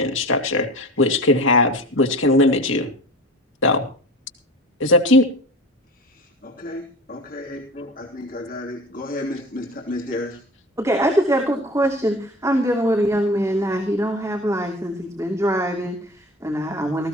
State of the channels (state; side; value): normal; both; correlation 0.36